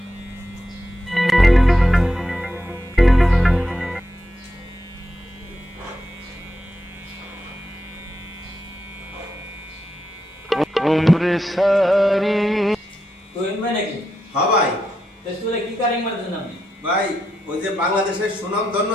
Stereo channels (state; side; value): normal; both; correlation 0.85